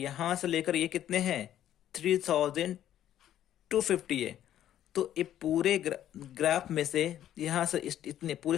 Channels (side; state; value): right; quieter; 11.5 dB